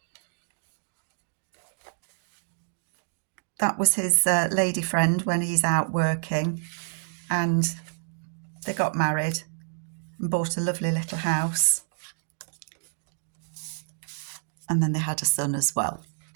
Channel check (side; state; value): left; silent; digital silence